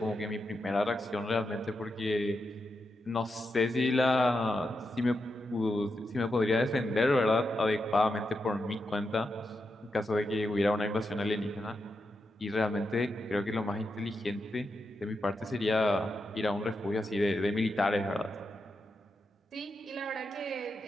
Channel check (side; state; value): both; normal; correlation 0.86